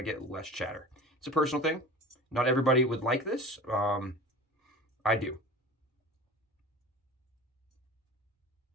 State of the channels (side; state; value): both; normal; correlation 0.37